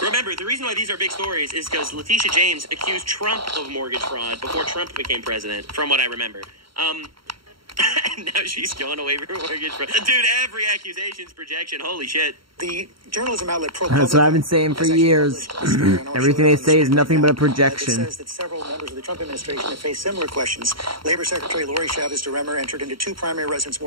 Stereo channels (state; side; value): late; left; 0.74 ms